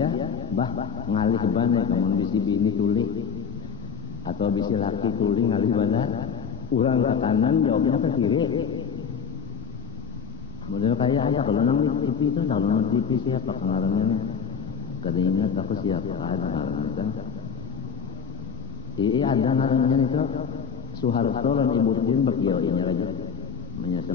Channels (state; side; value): quieter; right; 6.7 dB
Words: Bah ngalih banyak. Namun bisi bini tulis. Atau bisi laki tulis ngalih banyak. Orang ke kanan jawabnya ke kiri. Model kayak ada kalau nang TV itu kalau nang TV siapa pengaruhnya? Kadangnya tapi siapa ada pengaruhnya kan? Iya ada pengaruhnya itu. Soeharto dan Ibu Tien berkiau ini lagi. Menyesal